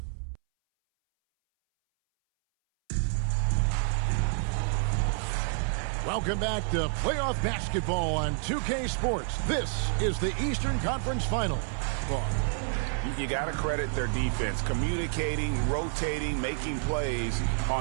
Welcome back to playoff basketball on 2K Sports. This is the Eastern Conference Final. You got to credit their defense, communicating, rotating, making plays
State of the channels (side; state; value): left; silent; 59 dB below the other